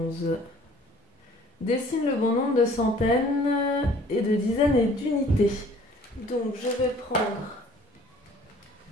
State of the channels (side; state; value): both; normal; correlation 0.53